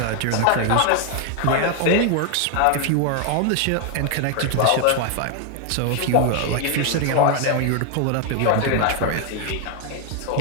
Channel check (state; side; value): different; both; correlation 0.00